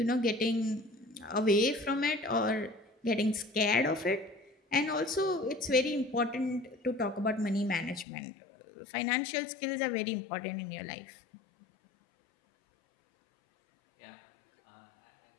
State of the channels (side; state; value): right; drops out; at 8.1 s